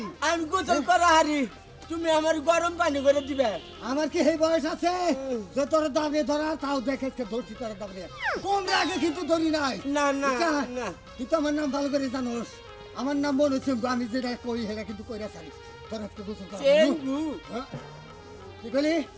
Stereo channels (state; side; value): identical; both; correlation 1.00